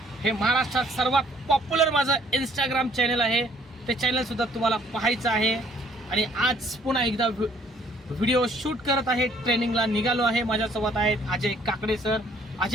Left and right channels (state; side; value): normal; both; correlation 0.61